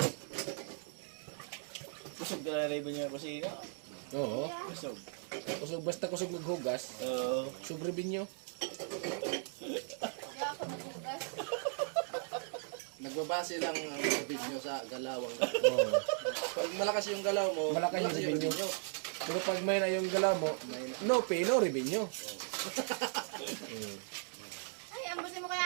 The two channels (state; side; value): silent; left; 53 dB below the other